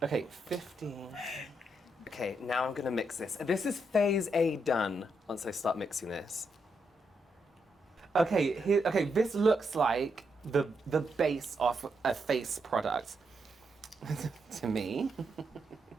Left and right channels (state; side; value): normal; both; correlation 0.81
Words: Okay, 15. Okay, now I'm gonna mix this. This is phase A done once I start mixing this. Okay, this looks like the base of a face product to me.